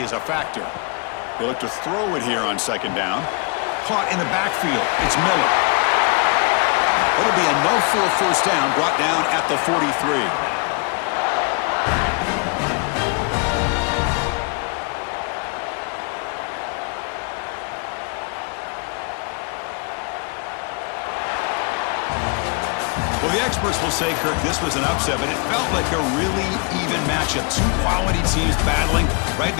a factor. They look to throw it here on second down. Caught in the backfield. It's Miller. It'll be enough for a first down, brought down at the 43. Well, the experts will say, Kirk, this was an upset, but it felt like a really even matchup. 2 quality teams battling right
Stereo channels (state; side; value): quieter; right; 33.0 dB